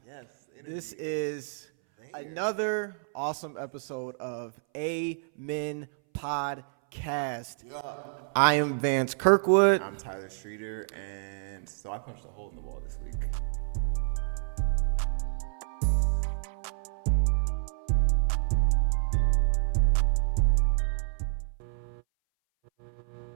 Yes. This is another awesome episode of Amen Podcast. Yeah. I am Vance Kirkwood. I'm Tyler Streeter, and so I punched a hole in the wall this week.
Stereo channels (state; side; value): silent; left; 59 dB below the other